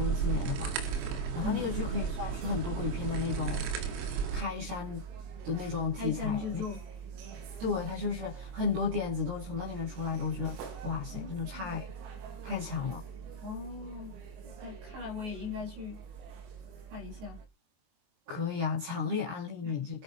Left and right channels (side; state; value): left; late; 22 ms